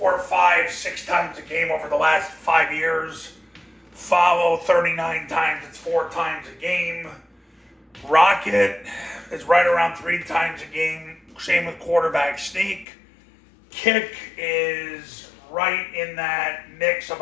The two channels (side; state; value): right; drops out; at 12.9 s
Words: 5, 6 times a game over the last 5 years. Follow 39 times, it's 4 times a game. Rocket is right around 3 times a game. Same with quarterback sneak. Kick is right in that mix,